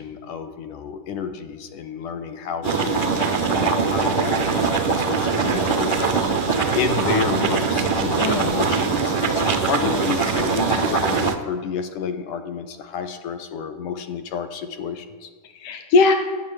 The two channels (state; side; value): late; right; 10 ms